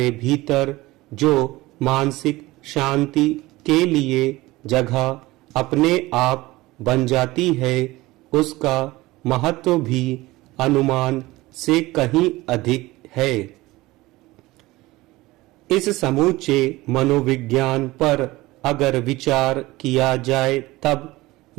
भीतर जो मानसिक शांति के लिए जगह अपने आप बन जाती है, उसका महत्व भी अनुमान से कहीं अधिक है। इस समूचे मनोविज्ञान पर अगर विचार किया जाए तब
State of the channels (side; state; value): left; quieter; 19.5 dB